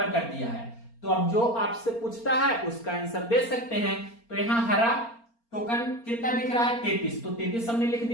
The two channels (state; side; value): late; right; 4.3 ms